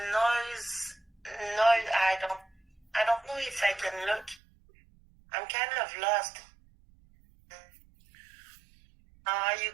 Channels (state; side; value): drops out; left; at 4.4 s